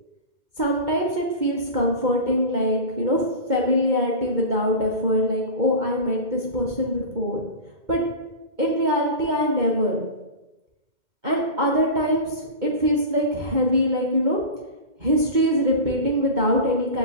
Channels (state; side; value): late; left; 2.2 ms